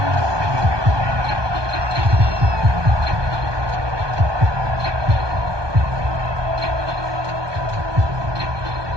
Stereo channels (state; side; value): late; left; 1.2 ms